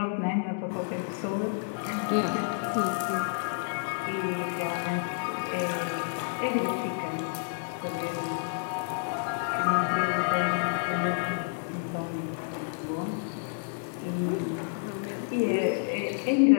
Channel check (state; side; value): silent; right; digital silence